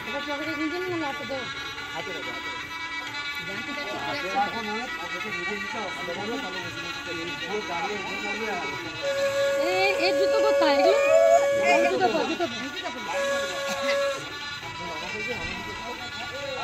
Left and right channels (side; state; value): both; identical; correlation 1.00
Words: এর জুতো কোথায়?